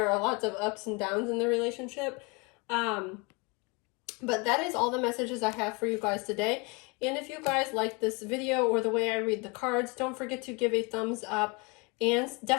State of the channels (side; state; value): right; quieter; 29.2 dB